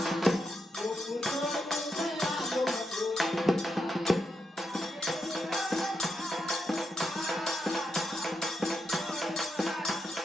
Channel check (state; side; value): normal; both; correlation 0.84